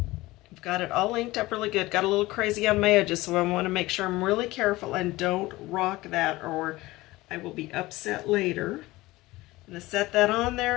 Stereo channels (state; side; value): quieter; right; 19.3 dB